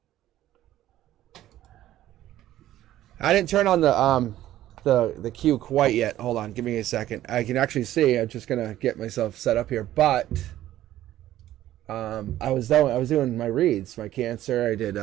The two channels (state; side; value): quieter; left; 13.6 dB